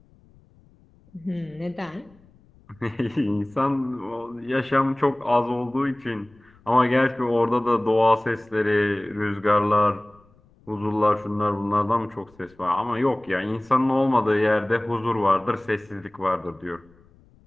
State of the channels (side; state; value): left; noise; rumble, 29 dB below the sound